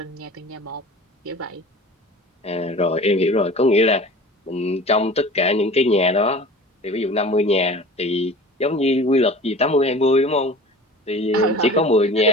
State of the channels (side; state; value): both; normal; correlation 0.40